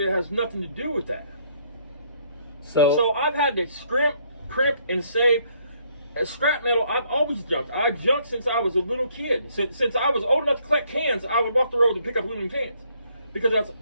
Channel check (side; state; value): both; inverted; correlation -0.67